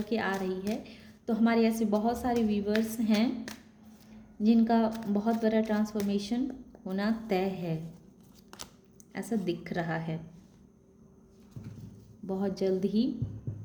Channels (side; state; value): both; identical; correlation 1.00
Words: के आ रही है। तो हमारे ऐसे बहुत सारे व्यूवर्स हैं जिनका बहुत बड़ा ट्रांसफॉर्मेशन होना तय है, ऐसा दिख रहा है। बहुत जल्द ही